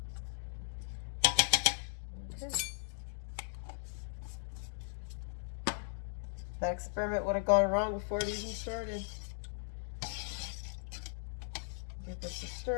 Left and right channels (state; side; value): silent; right; digital silence